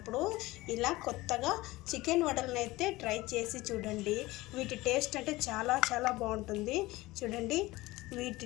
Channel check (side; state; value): right; quieter; 19.5 dB